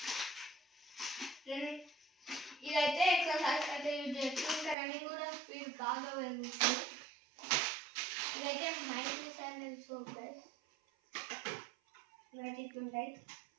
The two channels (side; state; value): left; drops out; at 4.8 s